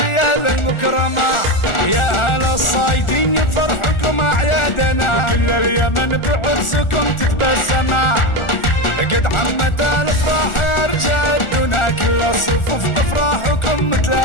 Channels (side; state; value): right; late; 1.4 ms